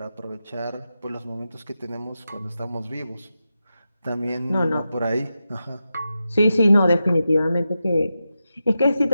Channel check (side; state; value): both; inverted; correlation -0.90